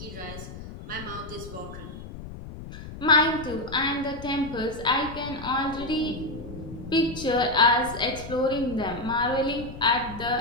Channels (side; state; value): left; noise; rumble, 12 dB below the sound